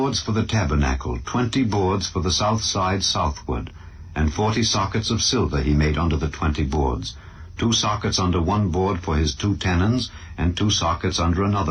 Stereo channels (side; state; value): both; identical; correlation 1.00